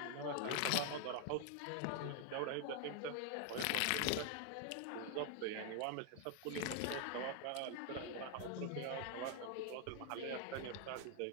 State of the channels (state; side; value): different; both; correlation 0.00